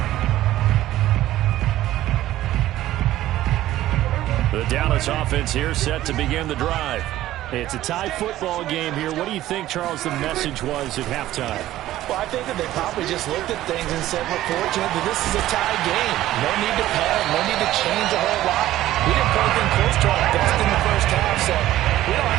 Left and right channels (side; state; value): left; quieter; 14.4 dB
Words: The Dallas offense here set to begin the drive. It's a tie football game here. What do you think, Charles, the message was at halftime? Well, I think that they probably just looked at things and said, we're fortunate that this is a tie game. No need to panic, no need to change a whole lot. We didn't play anything close to our best in the first half, so we don't